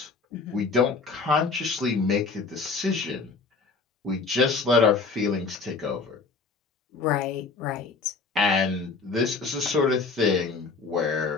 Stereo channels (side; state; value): right; quieter; 4.5 dB